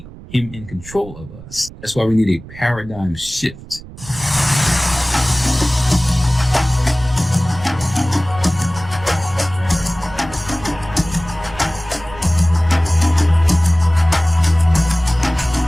him in control of us. That's why we need a paradigm shift.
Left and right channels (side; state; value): right; noise; rumble, 16 dB below the sound